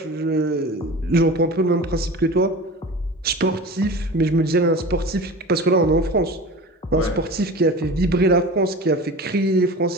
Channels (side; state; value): both; normal; correlation 0.35